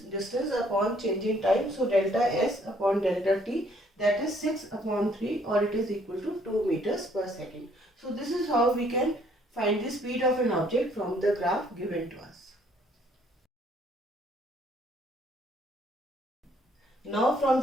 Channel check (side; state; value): both; normal; correlation 0.64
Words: distance upon change in time. So delta S upon delta T, that is 6 upon 3, or it is equal to 2 meters per second. So this is how we can find the speed of an object from the graph given to us. Now from